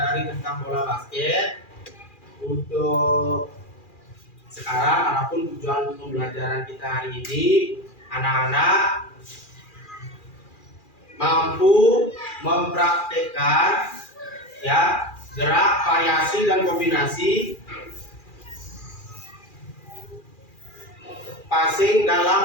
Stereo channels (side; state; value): right; late; 2.4 ms